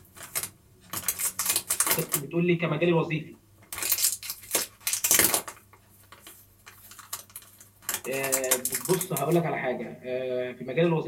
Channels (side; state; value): both; identical; correlation 1.00